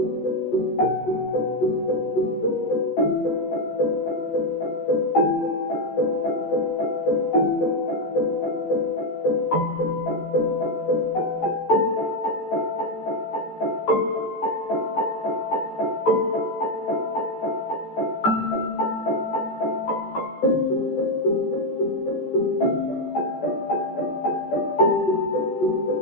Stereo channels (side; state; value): right; late; 14 ms